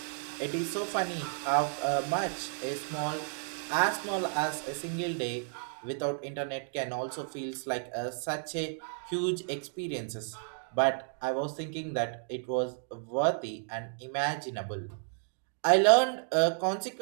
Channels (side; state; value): left; silent; digital silence